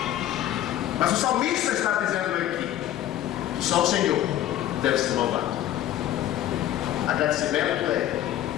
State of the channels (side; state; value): right; quieter; 12.6 dB